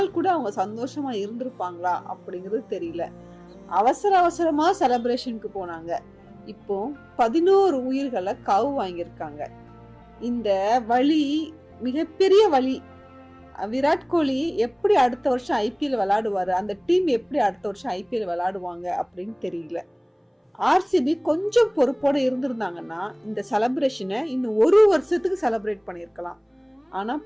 கூட அவங்க சந்தோஷமா இருந்திருப்பாங்களா அப்படிங்கிறது தெரியல. அவசர அவசரமா செலிப்ரேஷனுக்கு போனாங்க. இப்போ 11 உயிர்களை காவு வாங்கியிருக்காங்க. இந்த வழி மிகப்பெரிய வழி. விராட் கோலி எப்படி அடுத்த வருஷம் ஐபிஎல் விளையாடுவாரு, அந்த டீம் எப்படி அடுத்த வருஷம் ஐபிஎல் விளையாடுவாங்க அப்படின்னு தெரியல. ஆர்சிபி கொஞ்சம் பொறுப்போட இருந்திருந்தாங்கன்னா இந்த செலிப்ரேஷனை இன்னும் 1 வருஷத்துக்கு செலிப்ரேட் பண்ணிருக்கலாம். ஆனா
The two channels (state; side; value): identical; both; correlation 1.00